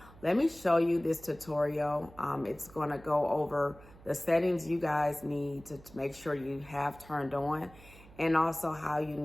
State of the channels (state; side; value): noise; right; hum, 22 dB below the sound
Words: let me show you this tutorial. It's going to go over the settings you guys need to make sure you have turned on, and also how you